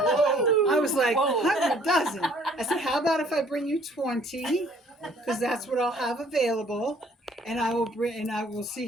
was like, 100 dozen. I said, how about if I bring you 20? Because that's what I'll have available. And I will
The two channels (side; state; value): both; normal; correlation 0.58